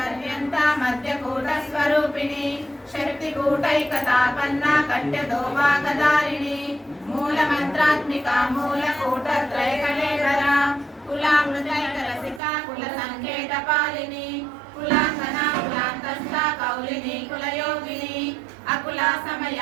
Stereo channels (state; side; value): drops out; left; at 12.4 s